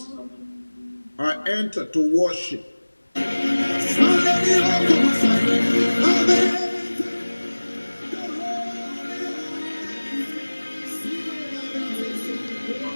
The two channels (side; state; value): both; inverted; correlation -1.00